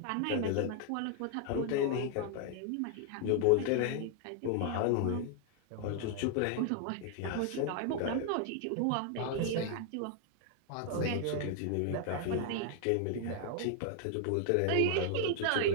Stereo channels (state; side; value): different; both; correlation 0.00